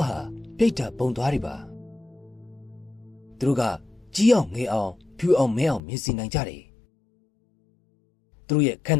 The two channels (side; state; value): right; drops out; at 5.8 s